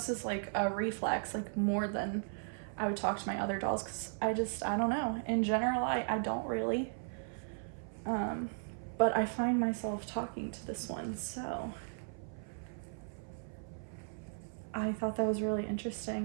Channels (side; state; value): left; silent; 53 dB below the other